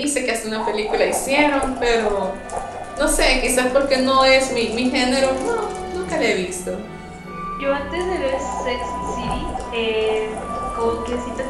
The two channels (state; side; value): identical; both; correlation 1.00